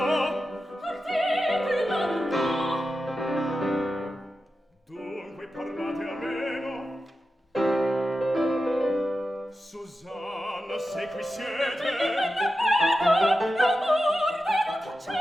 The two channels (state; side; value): normal; both; correlation 0.91